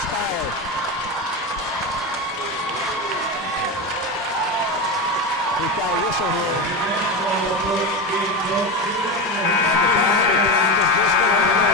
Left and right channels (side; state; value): both; normal; correlation 0.19